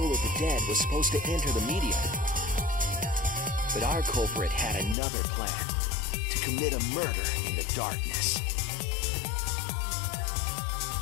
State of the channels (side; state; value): right; drops out; at 5.0 s